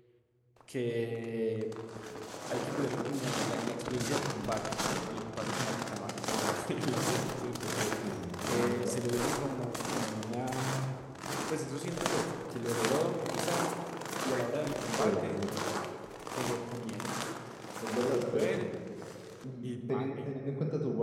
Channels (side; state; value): both; identical; correlation 1.00